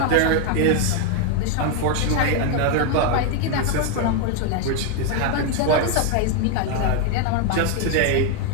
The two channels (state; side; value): different; both; correlation 0.01